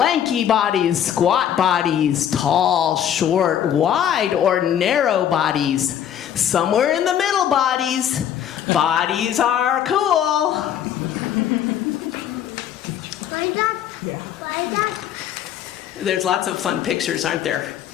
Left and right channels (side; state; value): right; quieter; 9.8 dB